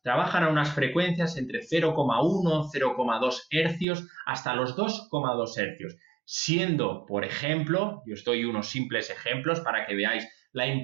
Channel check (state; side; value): drops out; left; at 3.9 s